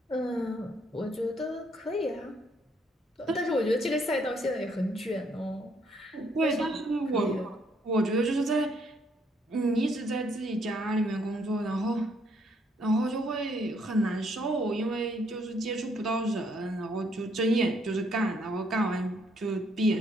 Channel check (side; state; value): both; normal; correlation 0.69